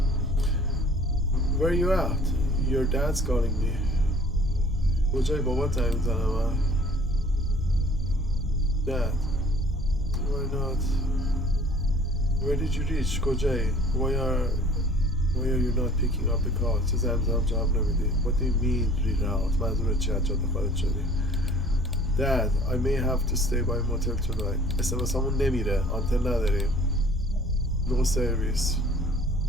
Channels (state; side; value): normal; both; correlation 0.51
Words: where are you at? Your dad's calling me. کجای بابا زنگ میزنم؟ Dad, why not? Where did you reach? کجایی؟ Why are you not picking up the call? چه زنگ میزنم جواب نمیدی؟ What do you mean reroute? منظورت چیه؟ جاده خارج شدی؟ Dad, I may have to stay by motel tonight. SMS همون نمیره. آنتن نداریم. No service.